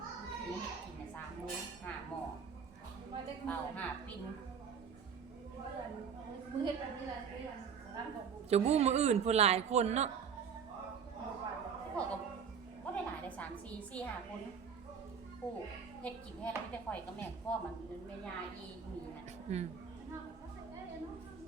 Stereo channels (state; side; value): quieter; left; 6.8 dB